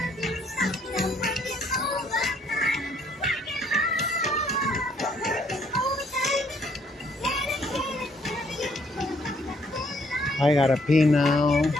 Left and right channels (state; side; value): normal; both; correlation 0.67